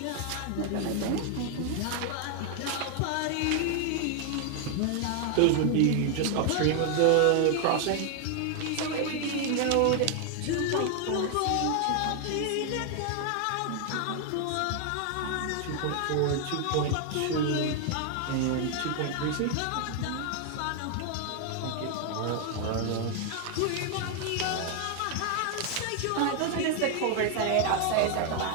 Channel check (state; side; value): different; both; correlation 0.00